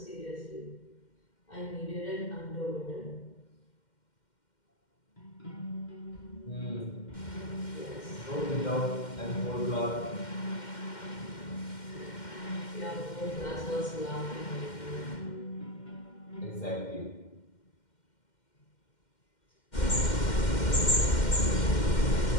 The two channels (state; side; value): late; right; 2.1 ms